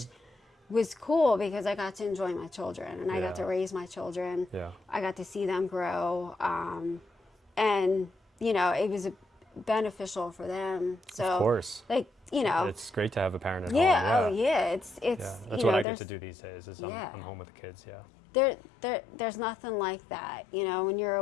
was cool because I got to enjoy my children, and I got to raise my children. Yeah. I got to see them grow, and it was beneficial for them. So, Of course. It's great to have a parent at home. Yeah. Oh yeah. It's. That's what I get to do these days. Is I'm home with the kids. Yeah. There's nothing like that. When you're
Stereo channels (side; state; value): right; drops out; at 15.9 s